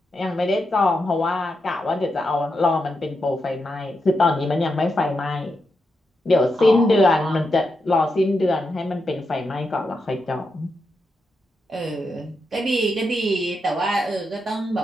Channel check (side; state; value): both; normal; correlation 0.85